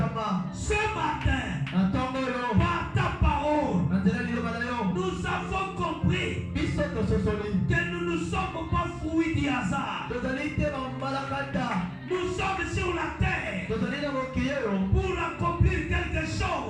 Ce matin, par ta parole, nous avons compris que nous ne sommes pas fruits du hasard. Nous sommes sur la terre pour accomplir quelque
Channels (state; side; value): identical; both; correlation 1.00